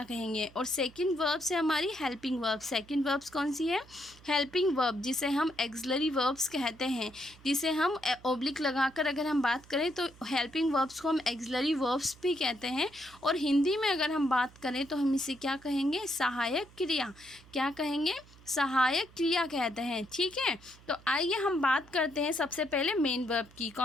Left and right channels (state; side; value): noise; right; hum, 24 dB below the sound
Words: कहेंगे। और सेकंड वर्ब से हमारी हेल्पिंग वर्ब। सेकंड वर्ब्स कौन सी है, हेल्पिंग वर्ब, जिसे हम एक्सलरी वर्ब्स कहते हैं, जिसे हम ओब्लिक लगाकर अगर हम बात करें तो हेल्पिंग वर्ब्स को हम एक्सलरी वर्ब्स भी कहते हैं। और हिंदी में अगर हम बात करें तो हम इसे क्या कहेंगे, सहायक क्रिया। क्या कहेंगे, सहायक क्रिया कहते हैं। ठीक है, तो आइए हम बात करते हैं सबसे पहले मेन वर्ब की।